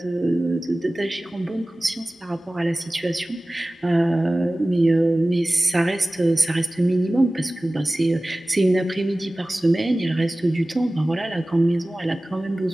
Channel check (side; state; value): both; normal; correlation 0.97